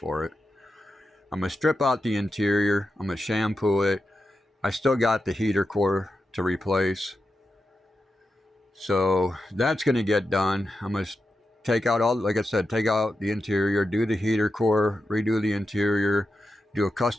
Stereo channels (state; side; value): normal; both; correlation 0.89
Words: it. I'm going to strip out the interior. I'm going to shampoo it. I still got the heater core to replace. So that's going to get done. I'm going to take out like I said, take out the interior, do the heater core, redo the interior, do a